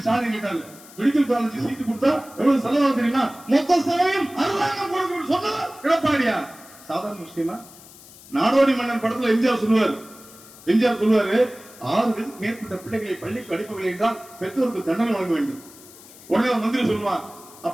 ஸ்டாலின் கேட்டாரு, மெடிக்கல் காலேஜ் சீட்டு கொடுத்தா எவ்வளவு செலவாகும் தெரியுமா? மொத்த செலவையும் அரசாங்கம் கொடுக்கணும் சொன்னவர் எடப்பாடியா. சாதாரண விஷயமா? நாடோடி மன்னன் படத்துல எம்ஜிஆர் சொல்லுவாரு, 6 மேற்பட்ட பிள்ளைகளை பள்ளிக்கு அனுப்பவில்லை என்றால் பெற்றோருக்கு தண்டனை வழங்க வேண்டும். உடனே மந்திரி சொல்லுவான்,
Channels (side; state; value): left; noise; hiss, 21 dB below the sound